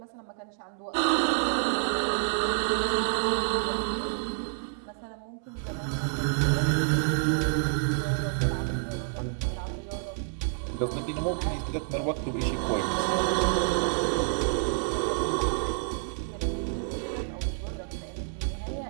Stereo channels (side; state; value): left; silent; digital silence